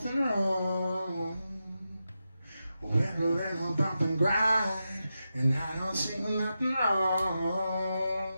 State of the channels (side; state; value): both; inverted; correlation -0.89